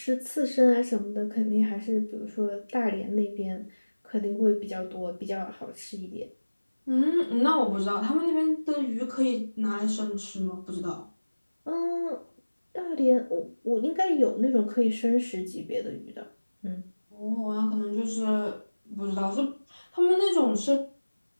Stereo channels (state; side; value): inverted; both; correlation -1.00